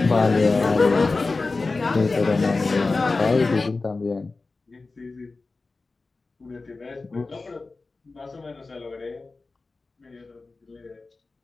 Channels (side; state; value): right; quieter; 3.7 dB